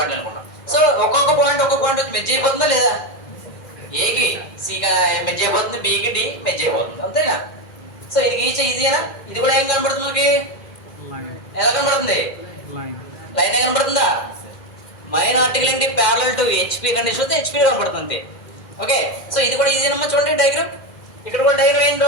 అనుకున్నాం. సో ఒక్కొక్క పాయింట్ వచ్చి మెర్జ్ అయిపోతుందా లేదా? ఏకి C మెర్జ్ అయిపోతుంది, Bకి D మెర్జ్ అయిపోతుంది, అంతేనా? సో ఇది గీచే ఈజీనా? ఇది కూడా ఏం కనబడుతుంది మనకి? ఎలా కనబడుతుంది? లైన్ ఏ కనబడుతుందా? మైన్ ఆర్టికల్ ఏంటి? ప్యారలల్ టు HP కండిషన్ వస్తే HP కనబడుతుంది అంతే. ఓకే, సో ఇది కూడా ఈజీనమ్మా. చూడండి డయాగ్రామ్. ఇక్కడ కూడా డయాగ్రామ్ ఏం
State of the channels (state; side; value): late; right; 2.1 ms